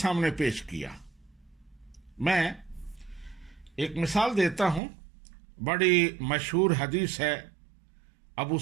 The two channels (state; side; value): drops out; left; at 4.8 s